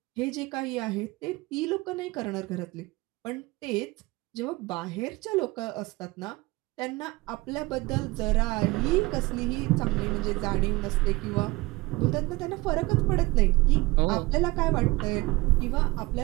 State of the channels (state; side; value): quieter; left; 21.8 dB